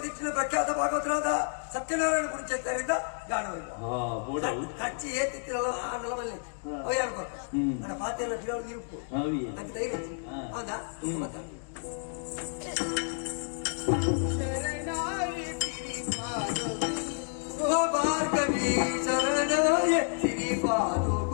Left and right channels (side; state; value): right; silent; digital silence